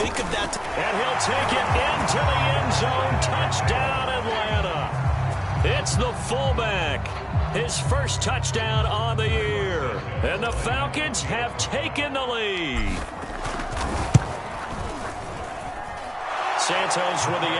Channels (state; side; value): identical; both; correlation 1.00